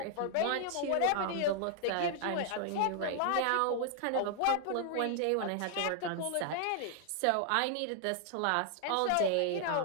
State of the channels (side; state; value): both; different; correlation 0.00